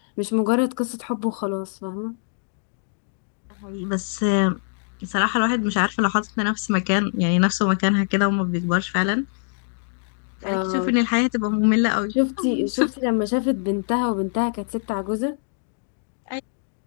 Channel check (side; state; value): right; silent; digital silence